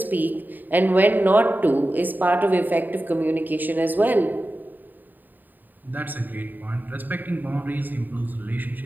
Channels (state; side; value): late; left; 0.088 ms